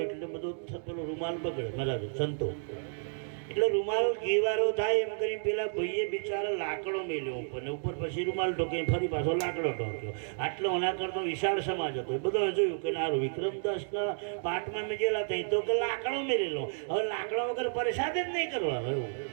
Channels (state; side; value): silent; left; digital silence